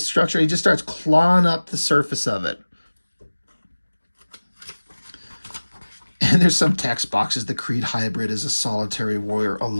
structure. He just starts clawing up the surface of it. And there's some text boxes. The Creed hybrid is a solitary warrior, a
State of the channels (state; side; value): inverted; both; correlation -1.00